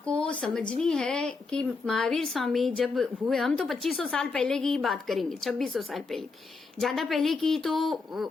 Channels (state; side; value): quieter; right; 4.2 dB